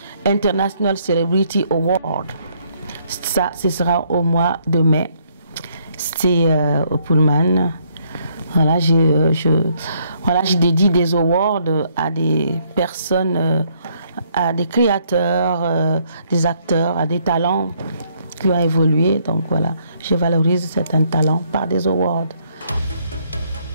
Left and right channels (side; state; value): both; inverted; correlation -0.69